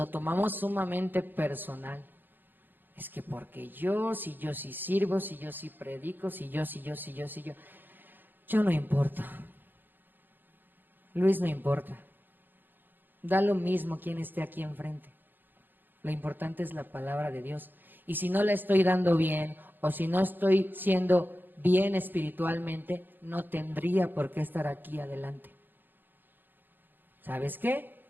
tomamos sumamente personal. Es que porque si yo sí sirvo, si yo sí predico, si yo. Yo no importa. Luis no importa. Da lo mismo quien esté aquí enfrente. Lo importante es la palabra de Dios. Y si no la estoy dando bien, o si no estoy siendo bien espiritualmente, no tendría por qué estar aquí adelante. ¿Sabes qué?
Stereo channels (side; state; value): left; late; 0.093 ms